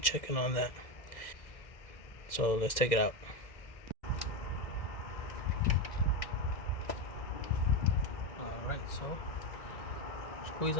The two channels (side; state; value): right; late; 2.0 ms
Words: on that. So let's take it out. Alright, so squeeze